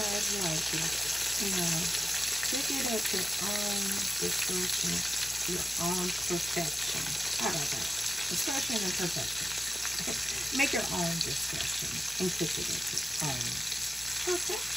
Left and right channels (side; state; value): both; normal; correlation 0.90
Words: like it, pick it at your own discretion, your own perfection. How about that? Discretion and perfection. Make your own discretion and cook it at your own